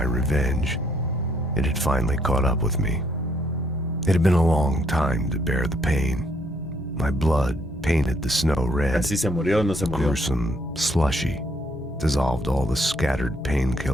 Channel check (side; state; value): both; normal; correlation 0.69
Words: revenge, it had finally caught up with me. It had been a long time to bear the pain. My blood painted the snow red, Así se murió, no se murió. gruesome, slushy, dissolved all the scattered